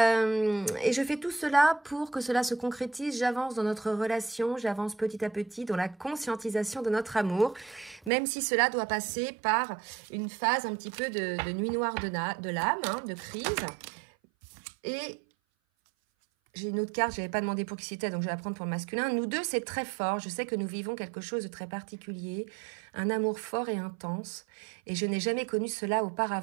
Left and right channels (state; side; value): drops out; left; at 8.1 s